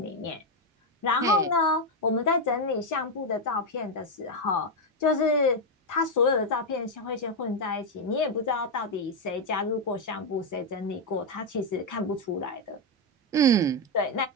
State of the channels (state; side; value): normal; both; correlation 0.04